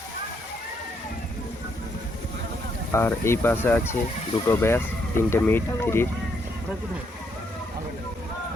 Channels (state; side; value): normal; both; correlation 0.74